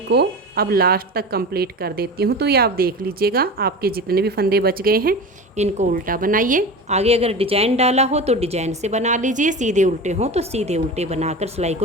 को अब लास्ट तक कंप्लीट कर देती हूँ। तो ये आप देख लीजिएगा, आपके जितने भी फंदे बच गए हैं इनको उल्टा बनाइए। आगे अगर डिजाइन डाला हो तो डिजाइन से बना लीजिए, सीधे उल्टे हो तो सीधे उल्टे बनाकर सिलाई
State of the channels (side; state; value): both; normal; correlation 0.30